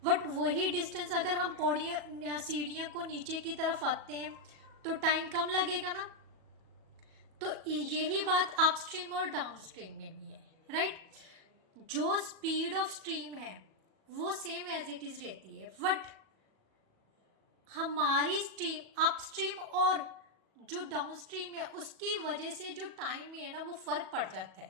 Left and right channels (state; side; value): late; left; 37 ms